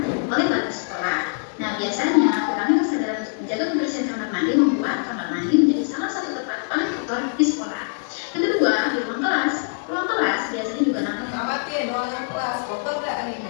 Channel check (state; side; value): silent; right; 63 dB below the other